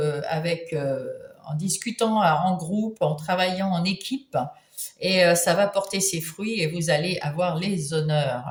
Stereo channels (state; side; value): identical; both; correlation 1.00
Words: en discutant en groupe, en travaillant en équipe. Et ça va porter ses fruits et vous allez avoir les honneurs,